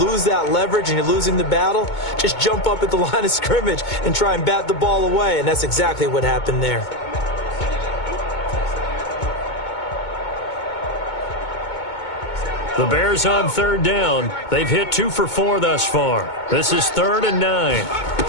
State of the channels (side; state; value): right; late; 2.2 ms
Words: that leverage and you're losing the battle, just jump up at the line of scrimmage and try and bat the ball away. And that's exactly what happened there. The Bears on 3rd down. They've hit 2 for 4 thus far. This is 3rd and 9.